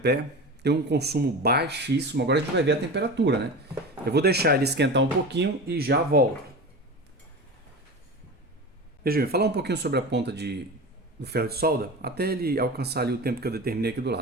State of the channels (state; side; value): normal; both; correlation 0.29